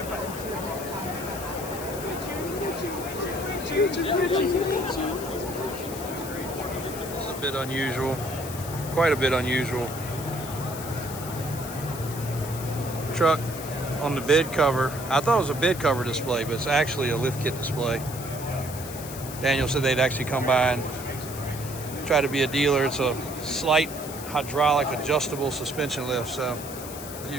It's a bit unusual. Quite a bit unusual. Truck on the bed cover. I thought it was a bed cover display, but it's actually a lift kit display. Daniel said they'd actually come by and try to be a dealer. It's a slight hydraulic adjustable suspension lift. So if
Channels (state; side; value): noise; left; hiss, 11 dB below the sound